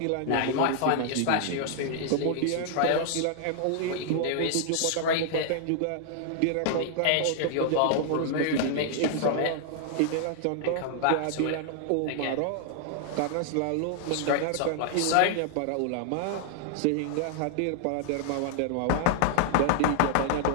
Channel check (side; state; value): both; different; correlation 0.00